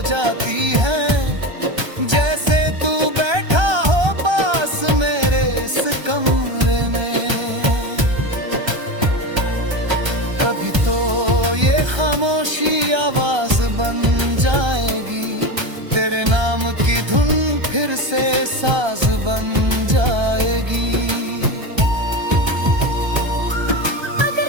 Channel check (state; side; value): late; left; 1.3 ms